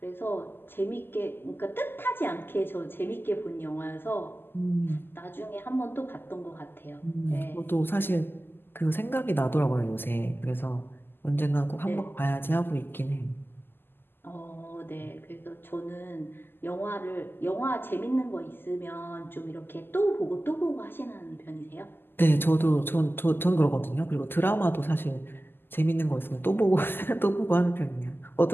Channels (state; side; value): late; right; 0.10 ms